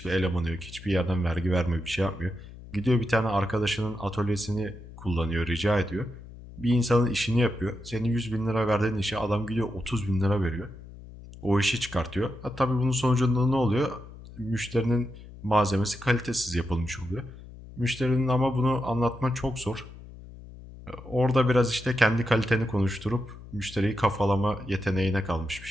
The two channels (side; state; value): left; noise; hum, 16 dB below the sound